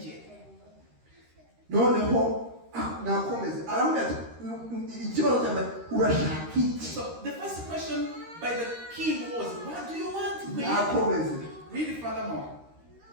Noneho nakomeze aramubwira ati ikibazo cyane urashaka iki? So the first question by the king was, what do you want, queen? Nakomeze. Read it furthermore.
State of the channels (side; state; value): left; late; 13 ms